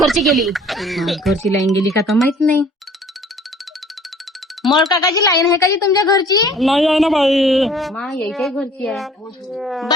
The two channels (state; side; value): normal; both; correlation 0.53